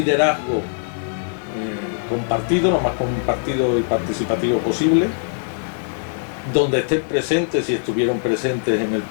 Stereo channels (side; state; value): right; silent; digital silence